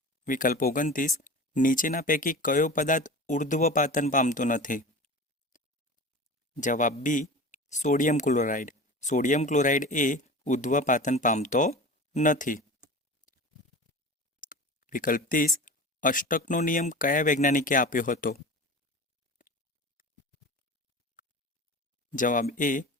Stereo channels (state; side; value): normal; both; correlation 0.34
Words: વિકલ્પ 29. નીચેના પૈકી કયો પદાર્થ ઉર્ધ્વપાતન પામતો નથી? જવાબ B sodium chloride. Sodium chloride એ ઉર્ધ્વપાતન પામતો નથી. વિકલ્પ 30. અષ્ટકનો નિયમ કયા વૈજ્ઞાનિકે આપ્યો હતો? જવાબ એ